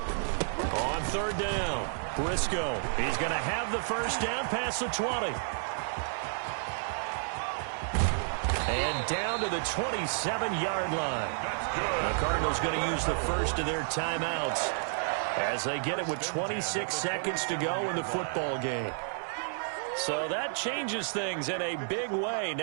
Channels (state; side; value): silent; left; digital silence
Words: On third down, Briscoe. He's going to have the first down past the 20. And down to the 27-yard line. The Cardinals going to use the first of their timeouts as they get it with 26 seconds to go in the football game. So that changes things in a big way.